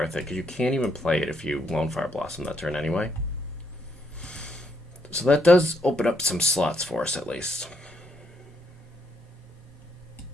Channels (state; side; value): normal; both; correlation 0.74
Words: it, because you can't even play it if you Lone Fire Blossom that turn anyway. So that does open up some slots for us, at least.